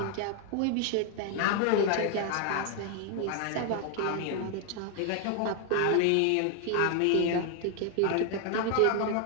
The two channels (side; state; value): both; different; correlation 0.01